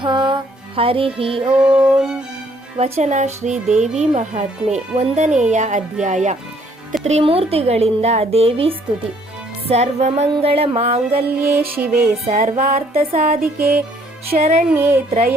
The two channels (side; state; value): both; normal; correlation 0.64